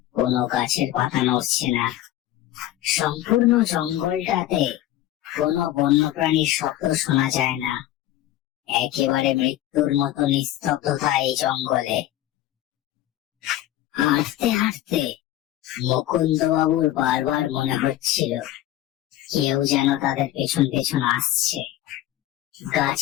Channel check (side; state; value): right; quieter; 13.8 dB